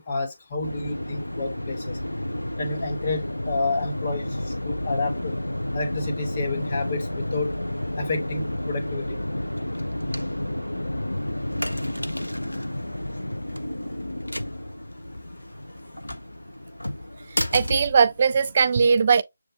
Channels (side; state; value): both; inverted; correlation -0.87